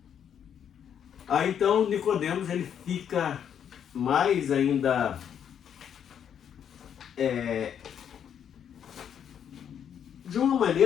Aí então Nicodemos ele fica mais ainda de uma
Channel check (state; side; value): quieter; right; 8.7 dB